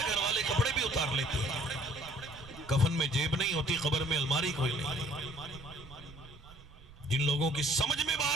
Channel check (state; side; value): noise; right; rumble, 19 dB below the sound